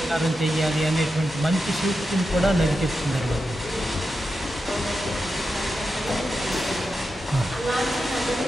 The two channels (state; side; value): normal; both; correlation 0.89